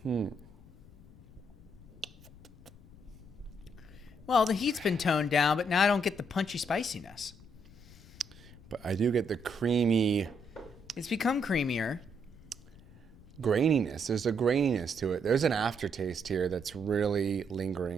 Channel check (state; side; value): noise; left; rumble, 21 dB below the sound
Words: Well, the heat's been toned down, but now I don't get the punchy spiciness. But I do get the creamy It's become creamier. graininess. There's a graininess to it. There's an aftertaste here that's really